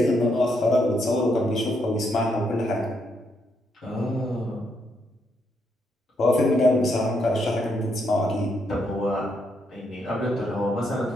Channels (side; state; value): both; normal; correlation 0.77